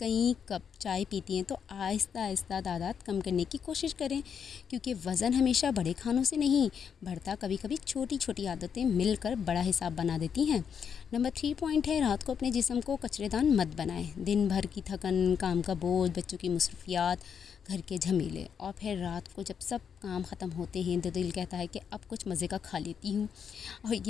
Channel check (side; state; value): right; quieter; 7.3 dB